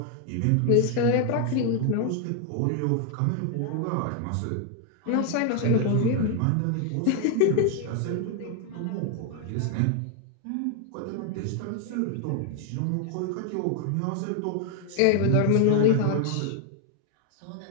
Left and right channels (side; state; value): both; different; correlation 0.00